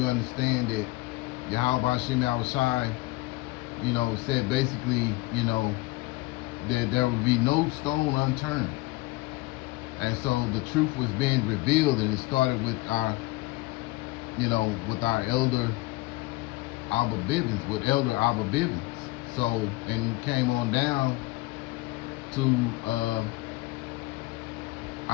understand that Yahweh Bashem Yahushai, said basically, that there would be no stone unturned. And so the truth was being revealed, and it started with our, with our elder Abba Bivens, with Elder Abba Bivens. So, and we came on down to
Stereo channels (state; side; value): quieter; right; 20.6 dB